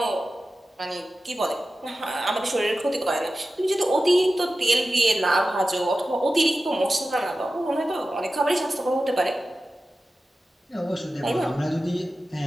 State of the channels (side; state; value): both; normal; correlation 0.94